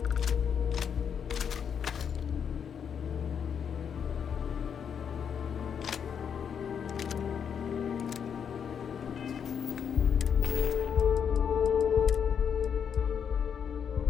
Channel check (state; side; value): quieter; right; 7.5 dB